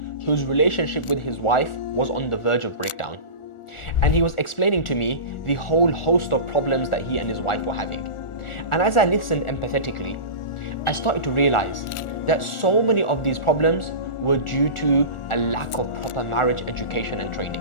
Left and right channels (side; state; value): right; late; 1.4 ms